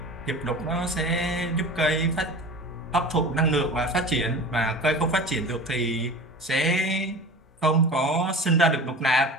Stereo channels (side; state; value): both; normal; correlation 0.36